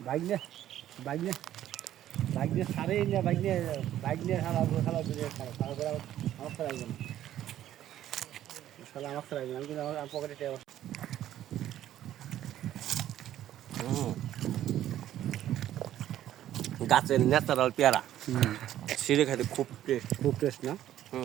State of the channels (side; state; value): left; quieter; 12.2 dB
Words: বাইক নিয়ে সারে না, বাইক নিয়ে খালা দূরে খালা আমার সারা আসবে না, আমার সারা আসবে না। আমি কিন্তু আমার পকেটে গাছের ন্যাচারাল পেয়ারা, সিঁড়ে খাইতে খুব টেস্ট না।